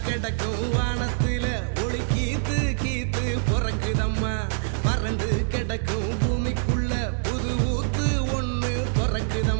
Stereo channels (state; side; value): silent; left; digital silence